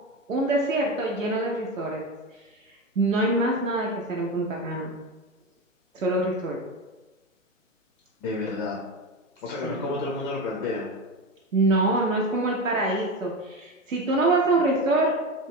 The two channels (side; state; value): both; normal; correlation 0.21